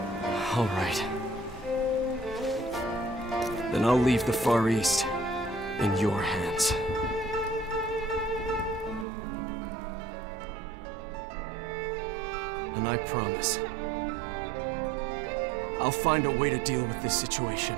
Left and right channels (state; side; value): drops out; left; at 9.1 s